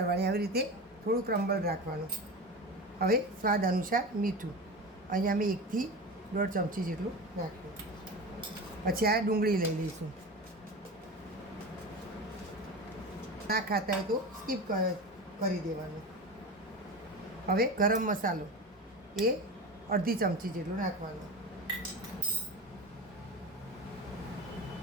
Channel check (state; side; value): normal; both; correlation 0.27